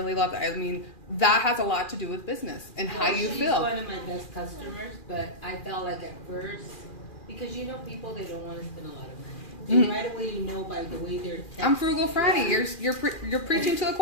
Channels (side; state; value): right; late; 2.4 ms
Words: love that. I mean, that has a lot to do with business and how you feel. She's one of my best customers, but I felt like at first, because people, they don't want to spend a lot of money. And right away, by the way they're texting. I'm frugal Franny. Yeah. You're preaching to the